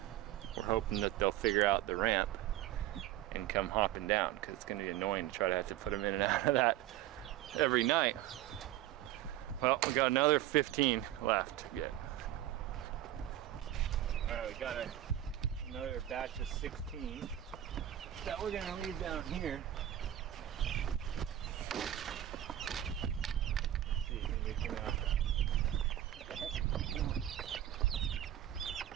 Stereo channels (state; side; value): quieter; left; 12.9 dB